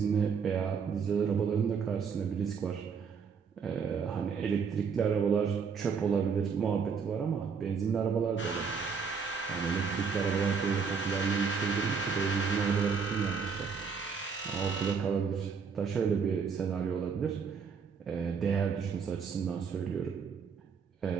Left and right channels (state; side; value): quieter; left; 6.0 dB